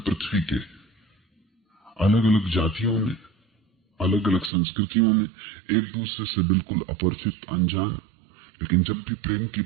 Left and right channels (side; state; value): left; drops out; at 4.5 s